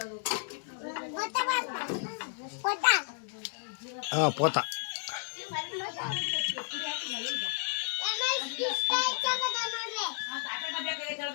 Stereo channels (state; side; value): silent; right; digital silence